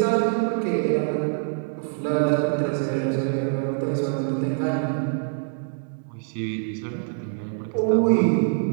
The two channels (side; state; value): left; silent; 62 dB below the other